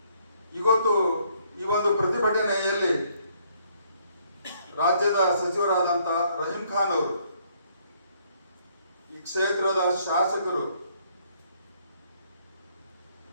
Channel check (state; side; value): inverted; both; correlation -0.67